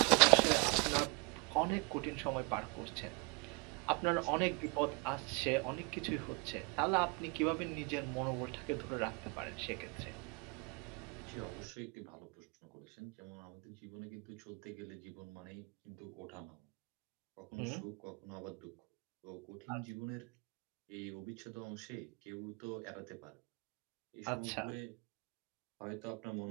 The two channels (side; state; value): left; quieter; 31.9 dB